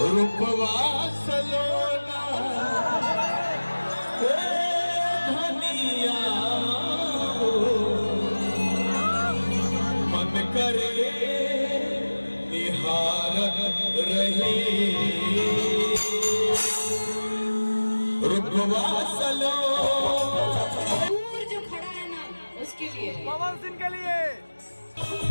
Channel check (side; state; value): both; inverted; correlation -1.00